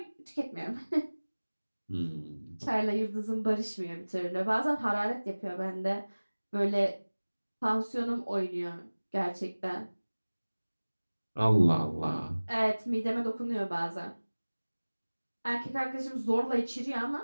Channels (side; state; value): both; inverted; correlation -1.00